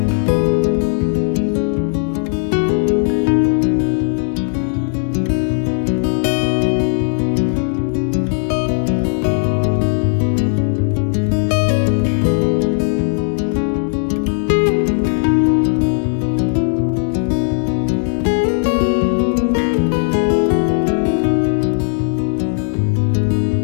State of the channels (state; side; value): silent; right; digital silence